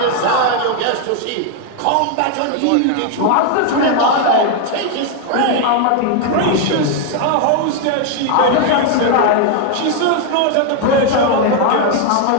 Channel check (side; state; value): both; different; correlation 0.01